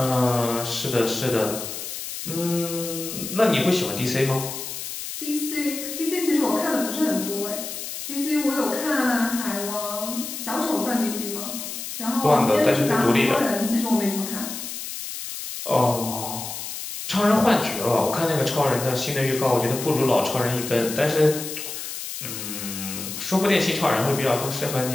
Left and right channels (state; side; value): noise; left; hiss, 7 dB below the sound